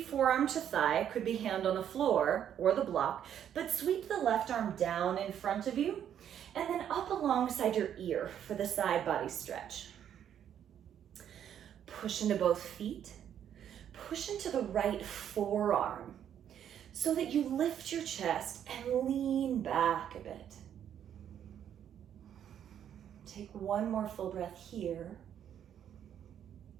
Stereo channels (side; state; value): left; quieter; 9.6 dB